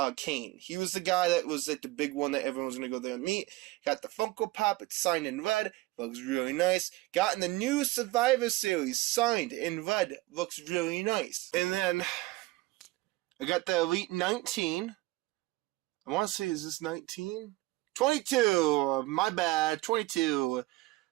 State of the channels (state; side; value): quieter; left; 20.1 dB